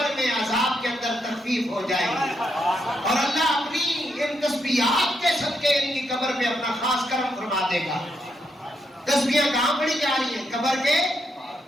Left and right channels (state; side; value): normal; both; correlation 0.80